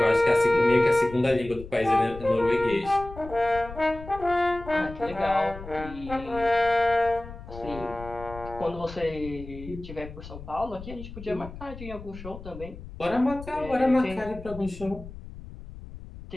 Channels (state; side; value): noise; left; rumble, 14 dB below the sound